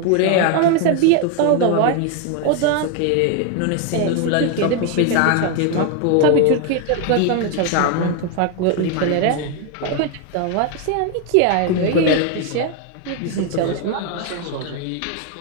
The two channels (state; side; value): different; both; correlation 0.01